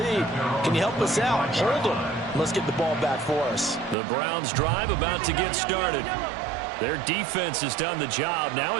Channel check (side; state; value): left; drops out; at 4.0 s